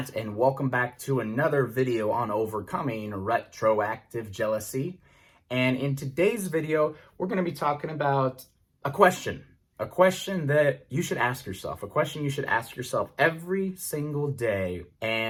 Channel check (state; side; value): identical; both; correlation 1.00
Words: and welcome back to another video on overcoming retroactive jealousy. And in today's video, we're going to be talking about a question that you should ask yourself, a question you should ask yourself every single day.